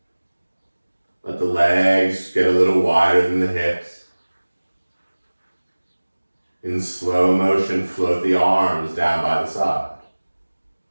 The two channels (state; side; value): inverted; both; correlation -1.00